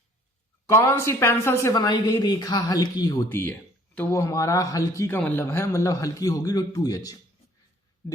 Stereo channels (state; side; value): normal; both; correlation 0.57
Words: कौन सी पेंसिल से बनाई गई रेखा हल्की होती है? तो वो हमारा हल्की का मतलब है, मतलब हल्की होगी तो 2H।